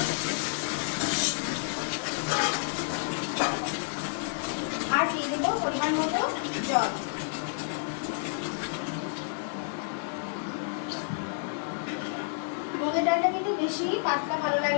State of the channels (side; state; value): right; silent; digital silence